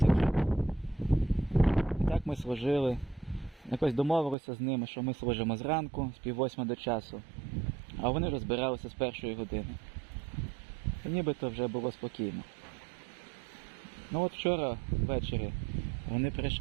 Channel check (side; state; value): left; drops out; at 4.4 s